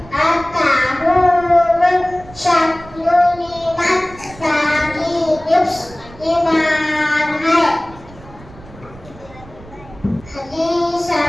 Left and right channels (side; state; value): right; noise; rumble, 20 dB below the sound